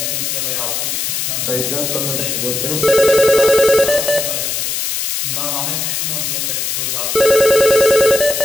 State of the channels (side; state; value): left; noise; hiss, 2 dB below the sound